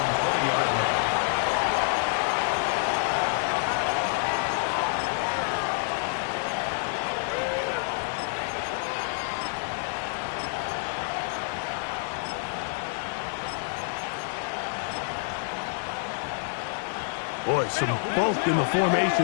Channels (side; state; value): right; silent; 59 dB below the other